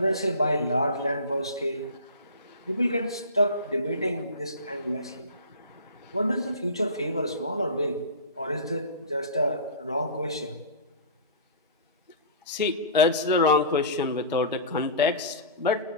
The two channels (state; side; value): inverted; both; correlation -0.34